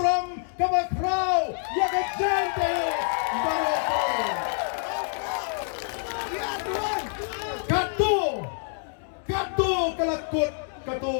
Kabakraw, yaka Giant Hills, Baroko. Katu kalakut, katu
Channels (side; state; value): right; silent; 60 dB below the other